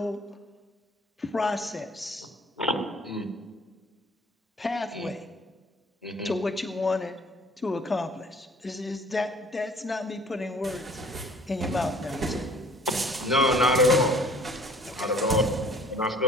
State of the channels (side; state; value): both; normal; correlation 0.51